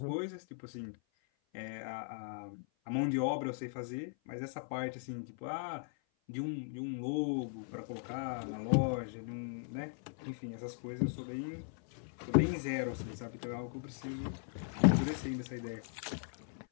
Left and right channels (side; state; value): right; silent; 52 dB below the other